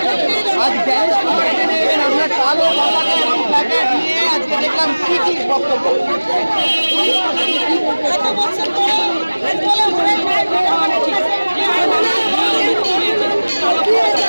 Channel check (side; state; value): both; inverted; correlation -1.00